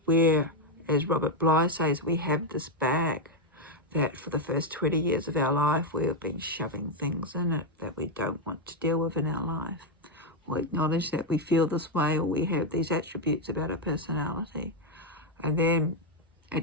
where, as Robert Bly says, we have this bag that for the first 20 years of our life we have been shoving things in it that we don't want to deal with in our life, or acknowledge that we feel this way or we have these attributes about our personality, and then it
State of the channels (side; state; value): both; normal; correlation 0.03